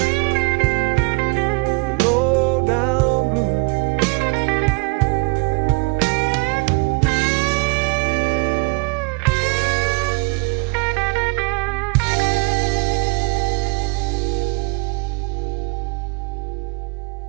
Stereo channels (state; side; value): quieter; left; 31.6 dB